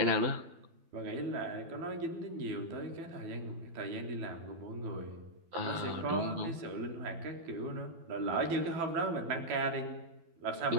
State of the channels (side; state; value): left; late; 12 ms